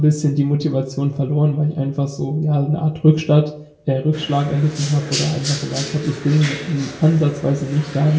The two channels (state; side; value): identical; both; correlation 1.00